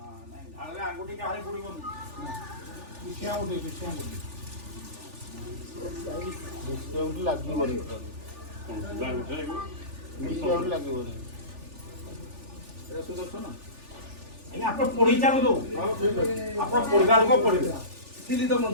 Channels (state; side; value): late; left; 3.4 ms